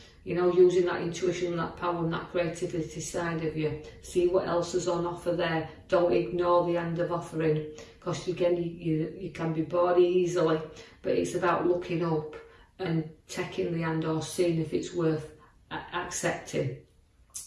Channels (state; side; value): identical; both; correlation 1.00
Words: You know, using that intuition, that power and that creativity side of you. See what else is on offer there. Don't ignore the hand of offering, because again, you can be bored easily. But it's about looking up and taking the hand, or seeing if it's worth accepting.